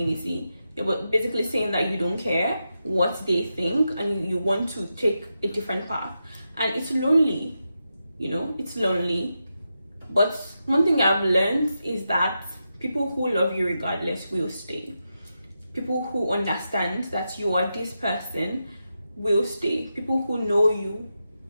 You're basically saying that you don't care what they think and you want to take a different path. And it's lonely, it's lonely. But one thing I've learned is that people who love you regardless will stay. People who understand that you are this person will stay. People who know you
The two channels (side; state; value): both; inverted; correlation -0.87